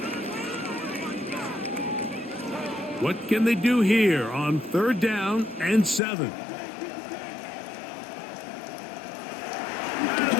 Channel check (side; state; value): right; drops out; at 6.0 s